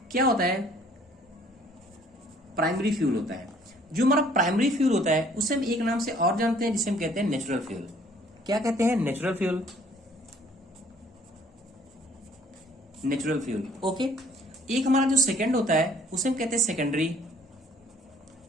क्या होता है? प्राइमरी फ्यूल होता है। जो हमारा प्राइमरी फ्यूल होता है उसे हम एक नाम से और जानते हैं, जिसे हम कहते हैं नेचुरल फ्यूल। क्या कहते हैं? Natural fuel. Natural fuel, okay. एक हमारा जो सेकंड होता है उसे हम कहते हैं सेकेंडरी।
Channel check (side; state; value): both; normal; correlation 0.59